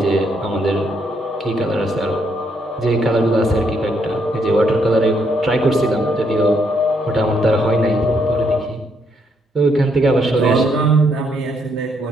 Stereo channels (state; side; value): normal; both; correlation 0.74